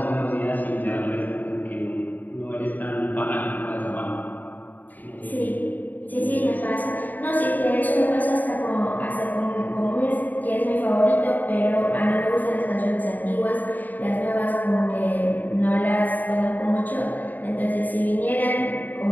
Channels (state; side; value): late; right; 0.085 ms